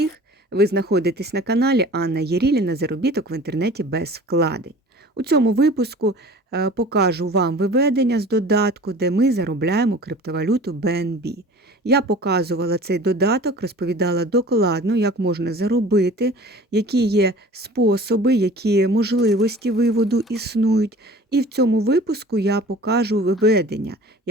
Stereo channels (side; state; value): both; normal; correlation 0.44